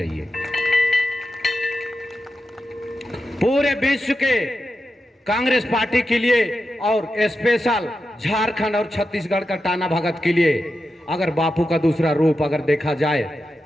पूरे विश्व के कांग्रेस पार्टी के लिए और स्पेशल झारखंड और छत्तीसगढ़ का टाना भगत के लिए अगर बापू का दूसरा रूप अगर देखा जाए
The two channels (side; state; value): both; normal; correlation 0.89